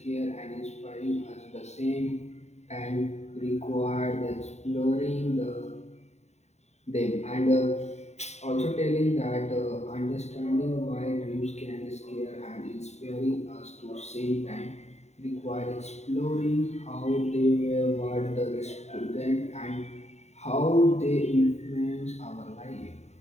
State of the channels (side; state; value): right; late; 0.32 ms